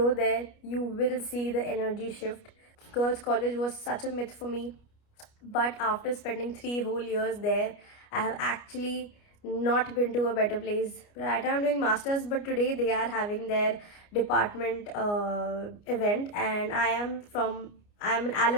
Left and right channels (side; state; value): right; late; 29 ms